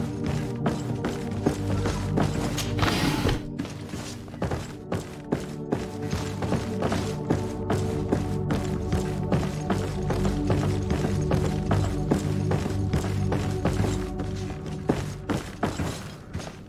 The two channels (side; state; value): both; identical; correlation 1.00